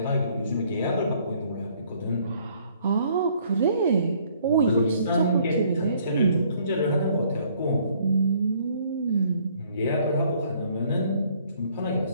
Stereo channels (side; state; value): both; inverted; correlation -0.62